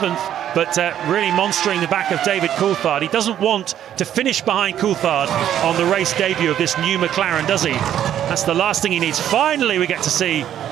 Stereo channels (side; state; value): left; quieter; 10.7 dB